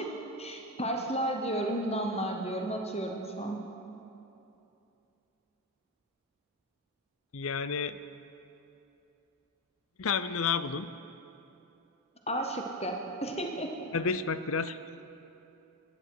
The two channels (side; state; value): both; normal; correlation 0.15